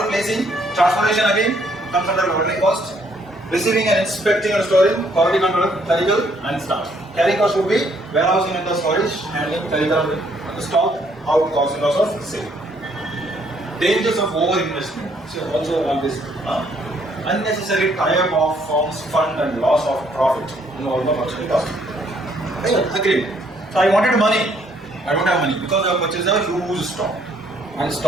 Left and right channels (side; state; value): both; normal; correlation 0.67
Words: placing, transportation again comes under ordering cost. Receiving and inspecting and storing, quality control, clerical, and staff. Carrying cost would be warehousing and the storage, handling, clerical, and the stock, out cost and loss of sale. Dangers of over investment. So also on this. Unnecessary tie-up of firms, fund and loss of profit in all the purchase cost. Agreed. So I wanted money. I don't have money because I purchased a huge stock, and